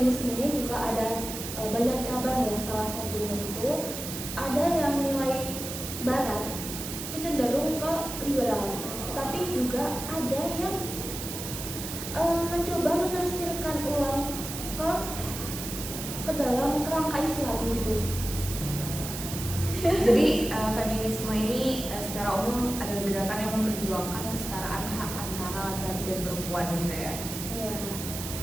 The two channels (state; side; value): noise; right; hiss, 7 dB below the sound